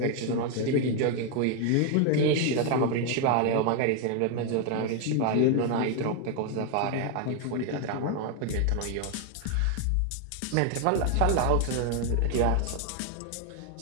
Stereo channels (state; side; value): different; both; correlation 0.00